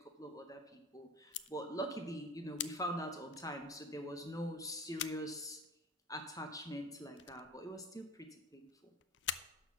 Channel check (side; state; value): both; normal; correlation 0.36